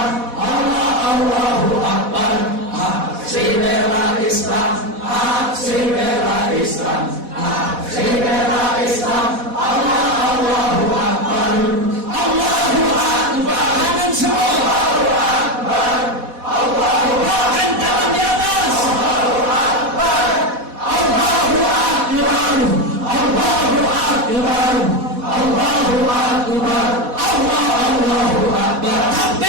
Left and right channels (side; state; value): left; late; 4.1 ms